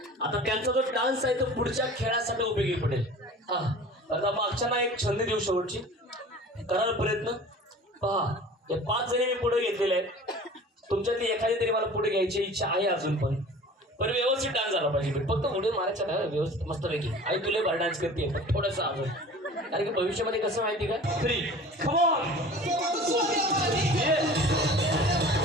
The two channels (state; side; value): normal; both; correlation 0.42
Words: आता त्यांचा जो डान्स आहे तो पुढच्या खेळासाठी उपयोगी पडेल हा आता मागच्या ना एक छंद देऊ शेवटची कराल प्रयत्न पहा हे 5 जणी मी पुढे घेतलेले आहेत तुमच्यातली एखादी तरी मला पुढे घ्यायची इच्छा आहे अजून पण व्यवस्थित डान्स झाला पाहिजे फक्त पुढे मारायचा ना व्यवस्थित मस्तपैकी आई तुला बार डान्स करते पण थोडंसं अजून कारण की भविष्यामध्ये कसं माहिती का 3 come on